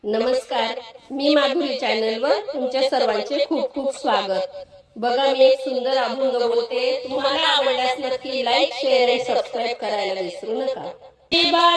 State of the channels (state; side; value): identical; both; correlation 1.00